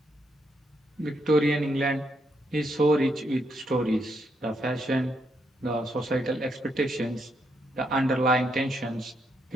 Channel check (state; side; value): normal; both; correlation 0.77